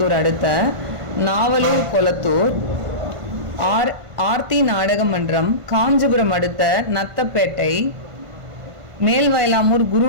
அடுத்த நாவலூர் கொளத்தூர். ஆர்த்தி நாடக மன்றம் காஞ்சிபுரம் அடுத்த நத்தப்பேட்டை. மேல்வயலாமூர்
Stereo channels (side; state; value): left; late; 1.5 ms